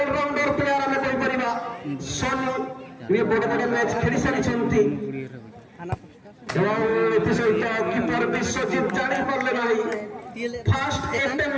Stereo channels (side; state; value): both; identical; correlation 1.00